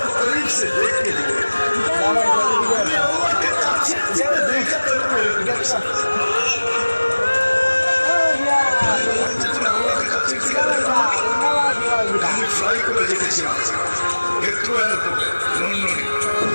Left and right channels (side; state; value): both; inverted; correlation -1.00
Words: को करीब से देख के दिए, मैं अल्लाह के काछे से देखा तो मेरे আমি ফ্লাই করে দেখেছিলাম হেথ্রো এয়ারপোর্টে লন্ডনে।